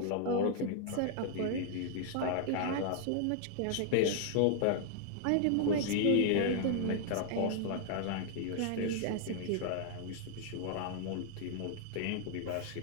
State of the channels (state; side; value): different; both; correlation -0.01